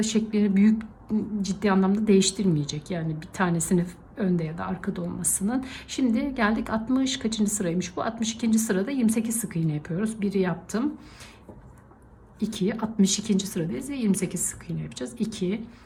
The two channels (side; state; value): both; identical; correlation 1.00